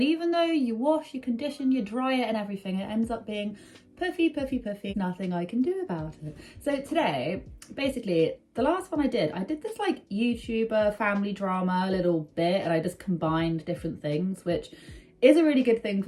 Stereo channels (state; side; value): identical; both; correlation 1.00